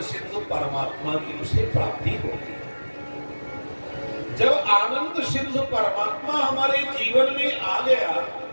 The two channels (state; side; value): inverted; both; correlation -1.00